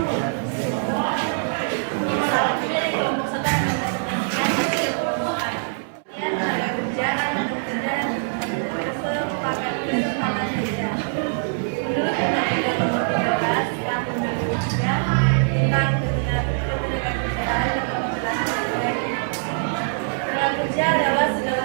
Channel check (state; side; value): silent; left; digital silence